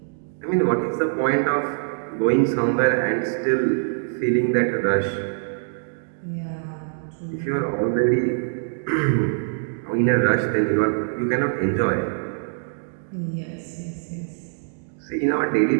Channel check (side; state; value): left; silent; digital silence